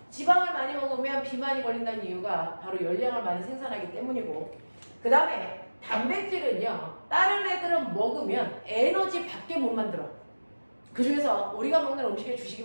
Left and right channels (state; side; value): inverted; both; correlation -1.00